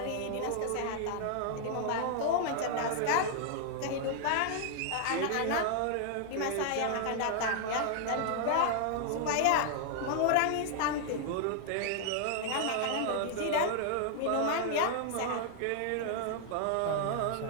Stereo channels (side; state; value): both; different; correlation 0.00